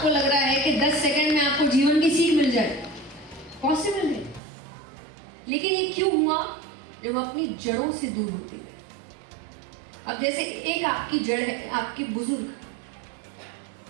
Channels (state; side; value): drops out; left; at 4.4 s